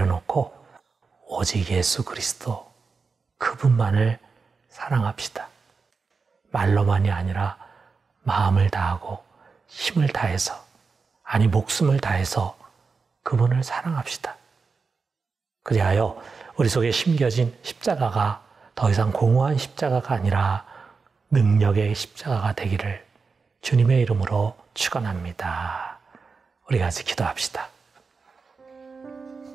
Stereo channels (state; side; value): quieter; left; 4.8 dB